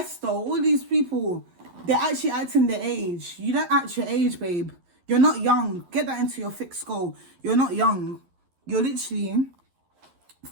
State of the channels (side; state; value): left; late; 11 ms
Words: all these people, they're actually acting their age. You don't act your age, babe. You're not young. Get that into your thick skull. You're not young. You're literally